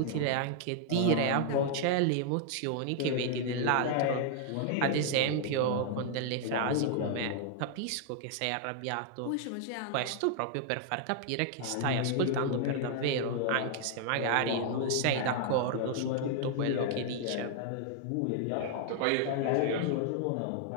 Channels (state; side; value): different; both; correlation 0.00